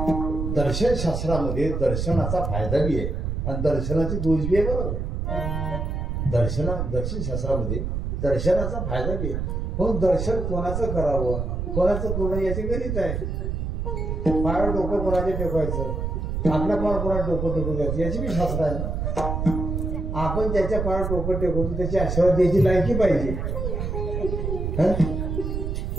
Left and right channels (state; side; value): noise; right; rumble, 2 dB below the sound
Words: दर्शन शास्त्रामध्ये दर्शनाचा फायदा बी आहे आणि दर्शनाची दोष बी आहे. बरोबर दर्शन शास्त्रामध्ये दर्शनाचा फायदा बी आहे. म्हणून दर्शन कोणाचं करावं कोणाचं करणं याची गणित आहे. पायावर डोकं कोणाचे टेकवायचं आपल्या पायावर कोणाला डोकं टेकून द्यायचं याची बी शास्त्र आहे ना. आपण ज्याच्या पायावर डोकं टेकवतो त्याची आशीर्वाद द्यायची लायकी पाहिजे.